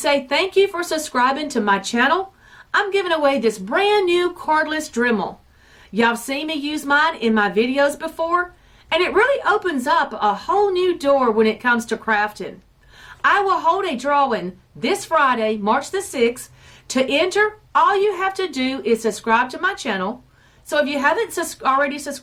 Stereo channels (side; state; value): both; identical; correlation 1.00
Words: thank you for subscribing to my channel, I'm giving away this brand new cordless Dremel. Y'all seen me use mine in my videos before, and it really opens up a whole new door when it comes to crafting. I will hold a drawing this Friday, March the 6th. To enter, all you have to do is subscribe to my channel. So if you haven't already